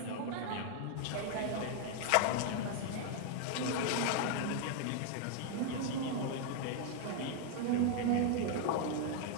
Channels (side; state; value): both; different; correlation 0.00